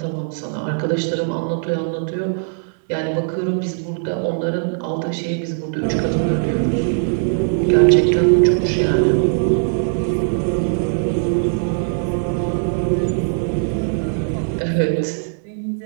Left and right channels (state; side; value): silent; left; 66 dB below the other